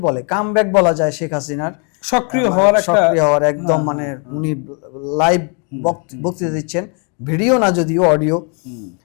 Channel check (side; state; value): right; quieter; 38.5 dB